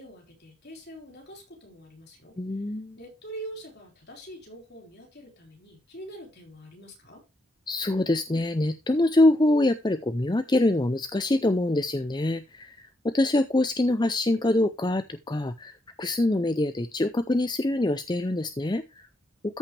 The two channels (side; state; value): both; normal; correlation 0.79